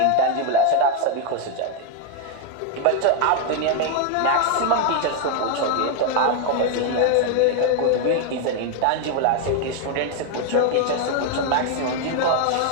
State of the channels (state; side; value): different; both; correlation 0.00